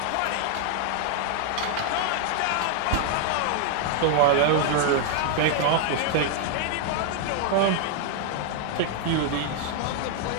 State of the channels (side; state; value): both; different; correlation 0.00